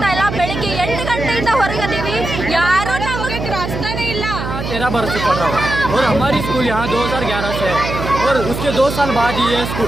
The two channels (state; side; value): noise; right; hum, 5 dB below the sound